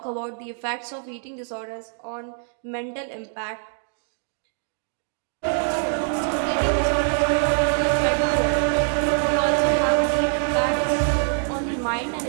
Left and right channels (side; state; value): left; silent; 62 dB below the other